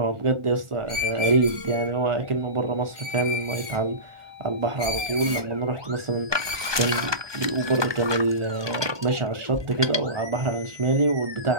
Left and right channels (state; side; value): late; left; 1.2 ms